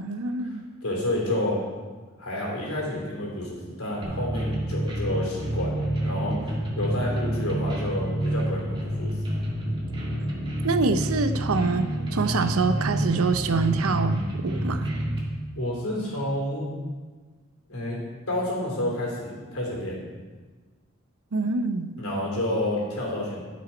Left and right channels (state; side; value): normal; both; correlation 0.46